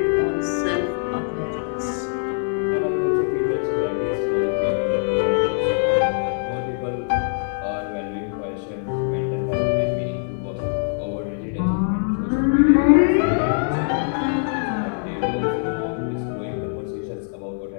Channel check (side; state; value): right; silent; 64 dB below the other